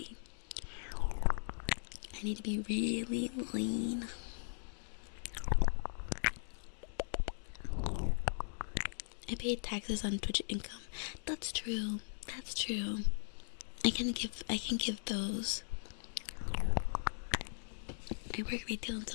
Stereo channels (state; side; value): silent; right; digital silence